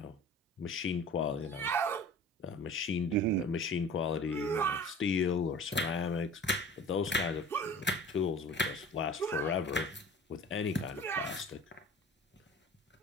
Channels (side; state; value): both; normal; correlation 0.42